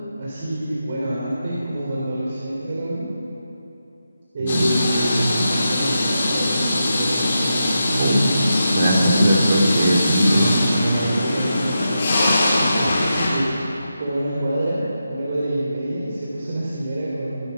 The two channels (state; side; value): inverted; both; correlation -0.87